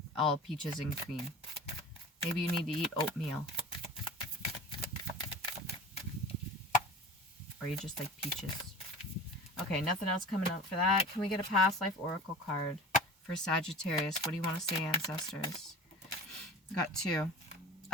all peaches and cream. Maybe you need to eat oatmeal. Or you just like peaches. Okay, nothing else coming out for that. Can we get a past life oracle card for Sagittarius? What do you want to say, ancestors? Got 2.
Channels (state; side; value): normal; both; correlation 0.38